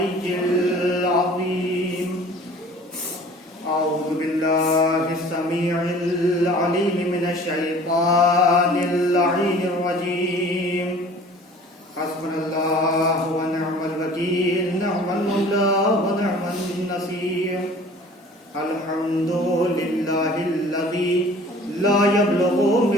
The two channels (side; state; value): both; normal; correlation 0.47